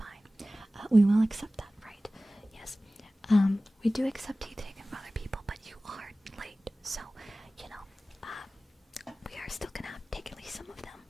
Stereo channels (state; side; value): normal; both; correlation 0.97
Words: We will accept that, right? Yes. We do accept teeth taken from other people, but you are late, so, we are still gonna have to take at least some of them